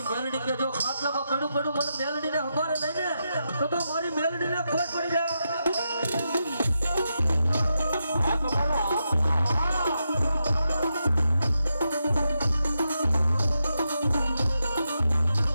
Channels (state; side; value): inverted; both; correlation -0.86